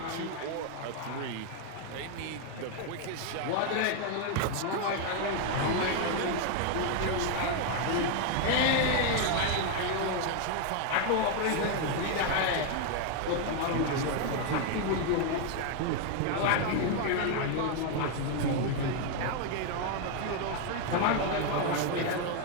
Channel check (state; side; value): different; both; correlation 0.01